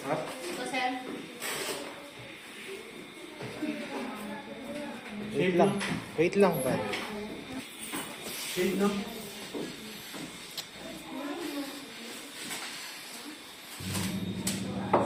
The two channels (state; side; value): identical; both; correlation 1.00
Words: Ito, sir. Wait lang. Wait lang ba? Shade, no?